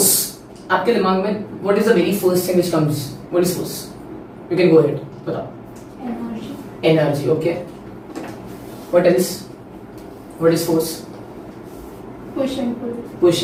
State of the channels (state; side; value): identical; both; correlation 1.00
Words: आपके दिमाग में what is the very first thing which comes? What is force? You can go ahead, बताओ। Energy, okay। What else? What is force? Push and pull. Push